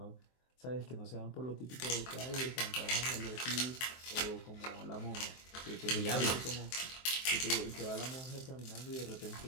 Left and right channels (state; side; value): late; right; 23 ms